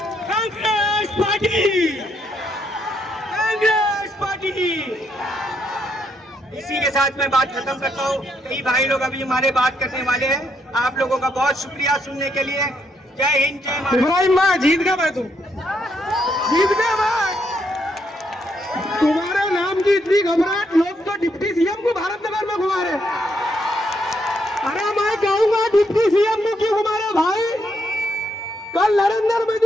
Congress party, Congress party. इसी के साथ मैं बात खत्म करता हूँ। कई भाई लोग अभी हमारे बात करने वाले हैं। आप लोगों का बहुत शुक्रिया सुनने के लिए। जय हिंद, जय भारत। इब्राहिम भाई जीत गया भाई, तुम जीत गया भाई। तुम्हारे नाम की इतनी घबराहट, लोग तो डिप्टी सीएम को भारत नगर में घुमा रहे। अरे मैं कहूंगा डिप्टी सीएम को क्यों घुमा रहे भाई? कल नरेंद्र मोदी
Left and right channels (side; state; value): both; normal; correlation 0.76